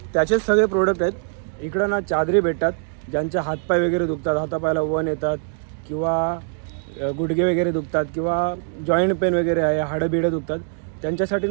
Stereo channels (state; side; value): silent; left; 64 dB below the other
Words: त्याचेच सगळे प्रोडक्ट आहेत. इकडं ना चादरी भेटतात, ज्यांचे हातपाय वगैरे दुखतात, हातापायाला वन येतात किंवा गुडघे वगैरे दुखतात किंवा जॉईंट पेन वगैरे आहे, हाडं बिडं दुखतात, त्यांच्यासाठी